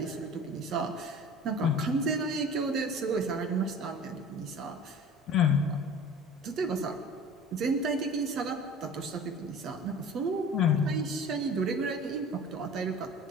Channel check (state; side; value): normal; both; correlation 0.41